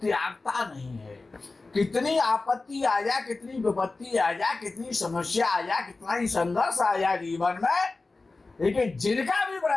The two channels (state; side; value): quieter; right; 3.6 dB